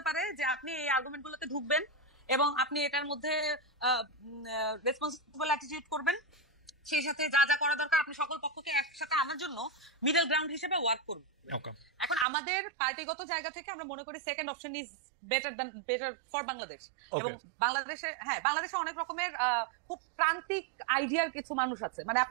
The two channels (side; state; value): left; drops out; at 12.2 s